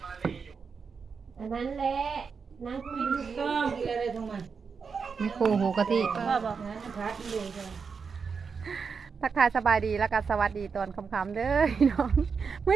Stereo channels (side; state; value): left; quieter; 5.6 dB